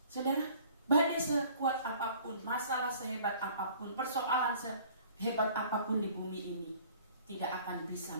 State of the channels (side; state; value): both; inverted; correlation -0.52